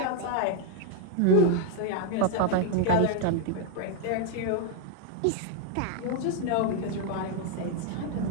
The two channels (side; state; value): both; different; correlation 0.00